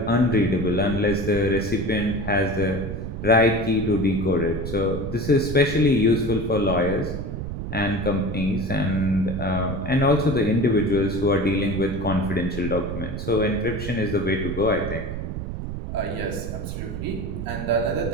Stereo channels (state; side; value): noise; right; rumble, 6 dB below the sound